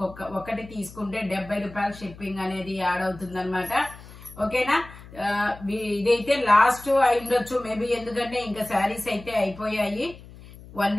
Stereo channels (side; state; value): left; noise; hum, 18 dB below the sound